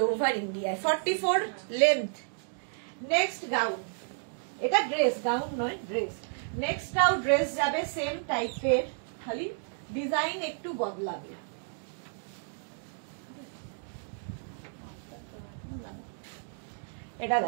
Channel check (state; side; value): silent; left; digital silence